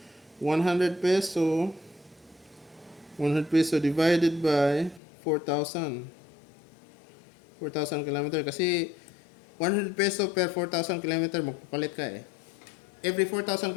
100 peso. 100 peso divided by 4,000. 4,000 kilometer. Kasi 100 peso per 4,000 kilometer, magpapalit ka eh. Every 4,000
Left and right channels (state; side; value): drops out; right; at 5.0 s